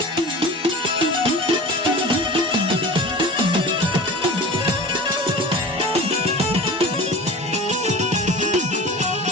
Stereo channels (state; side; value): normal; both; correlation 0.36